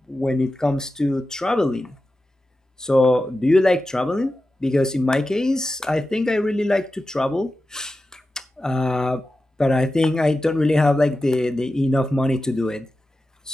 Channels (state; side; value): normal; both; correlation 0.93